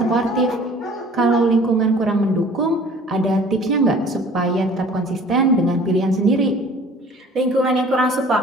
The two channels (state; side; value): normal; both; correlation 0.49